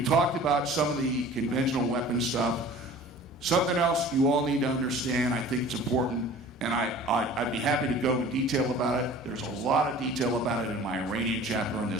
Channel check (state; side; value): normal; both; correlation 0.45